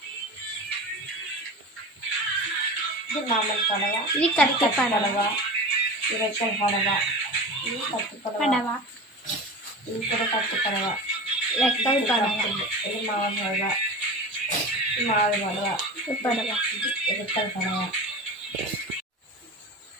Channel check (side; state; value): both; normal; correlation 0.32